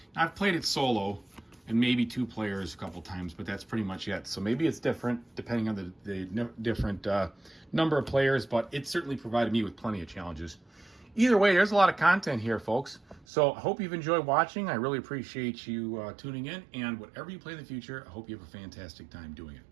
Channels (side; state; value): left; drops out; at 13.2 s